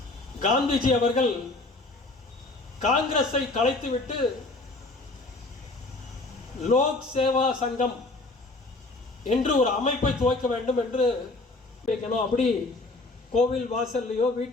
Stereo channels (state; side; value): quieter; right; 3.1 dB